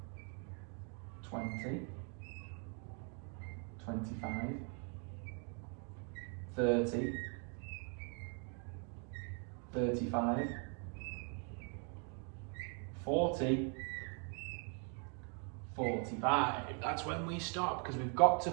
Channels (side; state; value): left; quieter; 39.8 dB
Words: 20, 25, 30, 35, 40, 45. That's when we stop, because we've got to